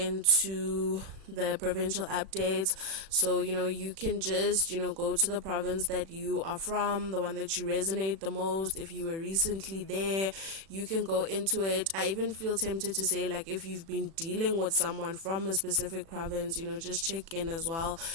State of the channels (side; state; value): left; late; 36 ms